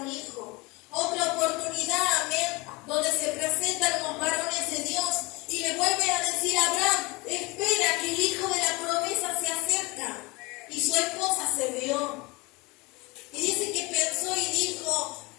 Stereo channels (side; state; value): right; quieter; 24.9 dB